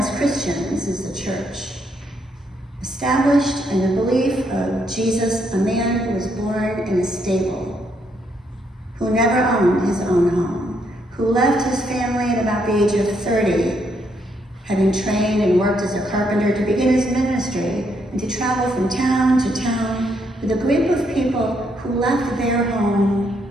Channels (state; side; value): normal; both; correlation 0.75